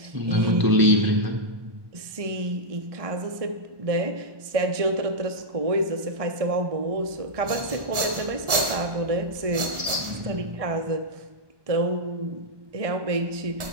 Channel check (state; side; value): late; left; 1.3 ms